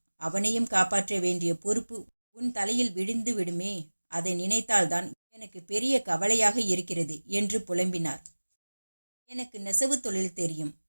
அவனையும் காப்பாற்ற வேண்டிய பொறுப்பு உன் தலையில் விழுந்து விடுமே. அதை நினைத்தால்தான் எனக்கு பெரிய கவலையாக இருக்கிறது என்று புலம்பினார். எனக்கு நெசவு தொழில் தெரியும்.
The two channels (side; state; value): both; inverted; correlation -1.00